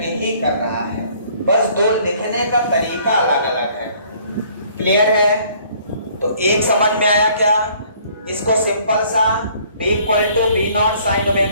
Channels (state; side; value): inverted; both; correlation -0.59